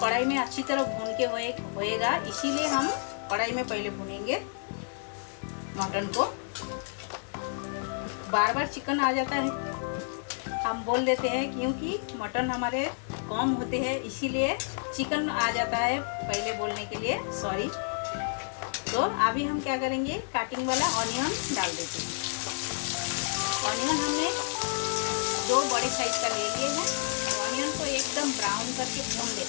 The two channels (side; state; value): right; silent; digital silence